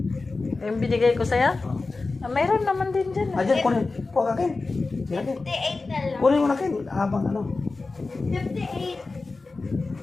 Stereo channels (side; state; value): right; quieter; 3.7 dB